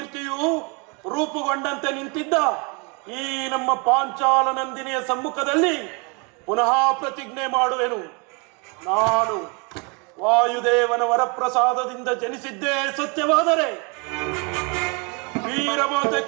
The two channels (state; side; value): quieter; left; 32.0 dB